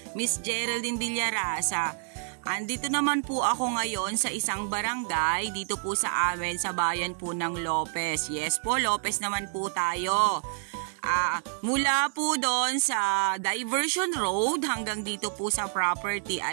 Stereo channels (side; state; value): left; silent; 59 dB below the other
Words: Miss Geraldine Villarasa. Andito naman po ako ngayon sa isang barangay dito po sa amin sa bayan po ng Lopez. Yes po, Lopez naman po tayo. Mula po doon sa Diversion Road hanggang dito po sa property